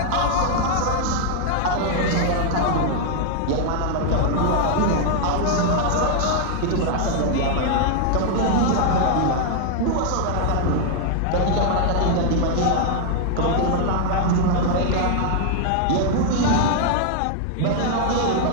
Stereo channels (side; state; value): both; different; correlation 0.00